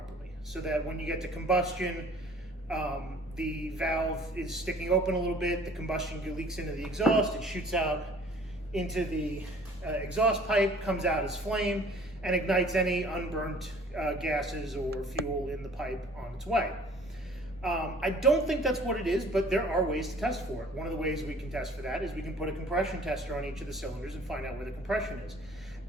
so that when you get to combustion, the valve is sticking open a little bit, the combustion leaks into the exhaust, it shoots out into the exhaust pipe, comes out as flame, and ignites any unburnt gases or fuel in the pipe on its way. I don't think that's what it is, but there are ways to test for it. One of the ways we can test for that is we can put a compression tester on each of the cylinders and find out where the compression is.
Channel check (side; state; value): both; normal; correlation 0.52